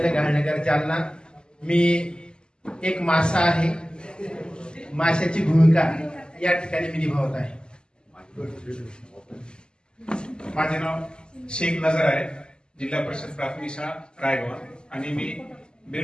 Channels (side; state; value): right; late; 0.047 ms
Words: घालनगर जालना। मी एक मासा आहे, माशाची भूमिका या ठिकाणी मी निभावत आहे। माझे नाव शेख नजर आहे, जिल्हा परिषद प्राथमिक शाळा रायगाव, आणि मी